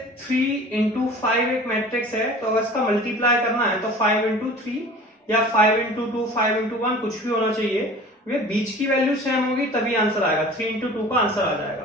3 इंटू 5 एक मैट्रिक्स है, तो अगर इसका मल्टीप्लाई करना है तो 5 इंटू 3 या 5 इंटू 2, 5 इंटू 1 कुछ भी होना चाहिए, वे बीच की वैल्यू सेम होगी तभी आंसर आएगा। 3 इंटू 2 का आंसर आ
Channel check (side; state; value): both; normal; correlation 0.43